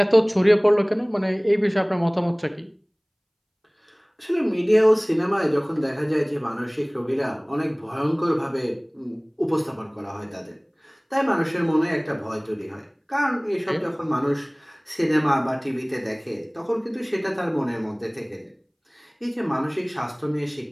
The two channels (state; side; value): identical; both; correlation 1.00